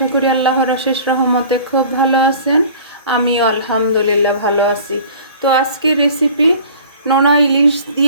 করি আল্লাহর অশেষ রহমতে খুব ভালো আছেন। আমিও আলহামদুলিল্লাহ ভালো আছি। তো আজকে রেসিপি নোনা ইলিশ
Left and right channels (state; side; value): inverted; both; correlation -0.46